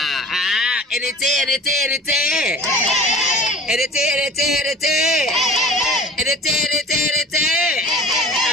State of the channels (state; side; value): normal; both; correlation 0.41